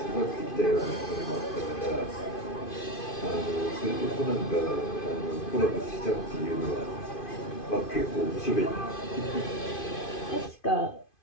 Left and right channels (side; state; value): right; late; 2.5 ms